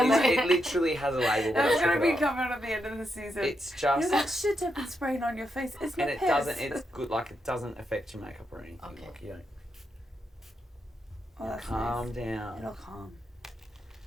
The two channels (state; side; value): normal; both; correlation 0.83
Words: literally has a label. That's gonna be covered at the end of the season. It's just. That shit I've been spraying on your face. It's not And it piss. doesn't. It's good. Like it doesn't affect your makeup or anything. Okay. Like you don't. Oh, that's Calm nice. down. It'll calm.